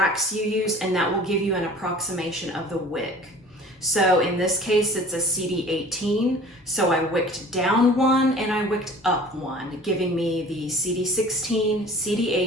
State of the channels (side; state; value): both; normal; correlation 0.46